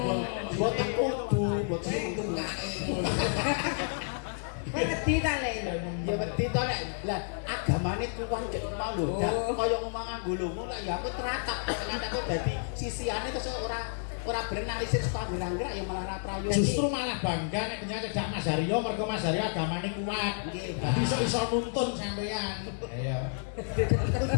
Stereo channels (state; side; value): silent; right; digital silence